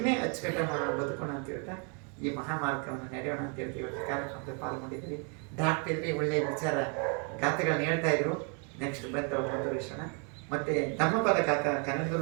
ಅಚ್ಚುಕಟ್ಟ ಮಾಡೋಣ, ಬದುಕೋಣ ಅಂತ ಹೇಳ್ತಾ ಈ ಮಹಾಮಾರ್ಗವನ್ನು ನಡೆಯೋಣ ಅಂತ ಹೇಳ್ತೀವಿ. ಇವತ್ತು ಕಾರ್ಯಕ್ರಮದಲ್ಲಿ ಪಾಲ್ಗೊಂಡಿದ್ದೀವಿ. ಡಾಕ್ಟರ್ ಒಳ್ಳೆಯ ವಿಚಾರ ಗಾಥೆಗಳನ್ನ ಹೇಳ್ತಾ ಇದ್ರು. ನೆಕ್ಸ್ಟ್ ಮುಂದುವರಿಸೋಣ. ಮತ್ತು ಧಮ್ಮಪದ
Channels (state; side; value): quieter; left; 38.0 dB